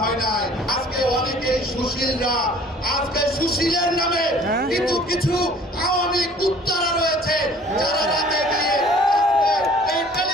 হয় নাই? আজকে অনেকেই সুশীলরা, আজকে সুশীলের নামে কিন্তু কিছু আওয়ামী কুত্তারা রয়েছে যারা রাতে গিয়ে এই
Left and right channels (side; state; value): both; normal; correlation 0.52